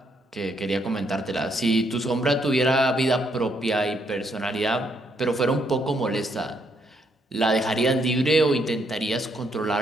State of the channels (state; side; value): normal; both; correlation 0.73